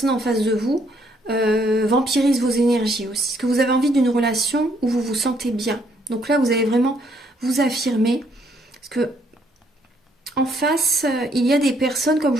en face de vous vampirise vos énergies aussi. Parce que vous avez envie d'une relation où vous vous sentez bien. Donc là, vous allez vraiment vous affirmer. Parce que en face, il y a des personnes, comme je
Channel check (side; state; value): both; normal; correlation 0.69